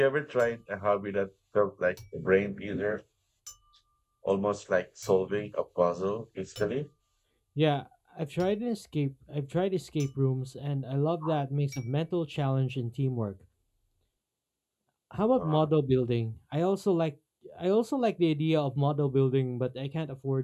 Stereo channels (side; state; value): both; identical; correlation 1.00